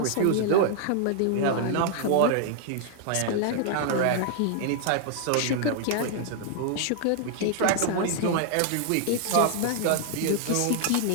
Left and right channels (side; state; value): both; different; correlation -0.01